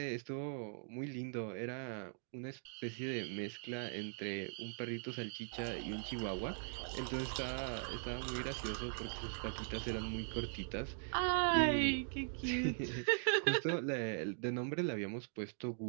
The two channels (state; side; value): silent; left; digital silence